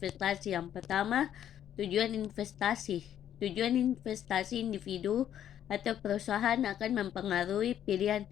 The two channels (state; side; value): quieter; right; 10.4 dB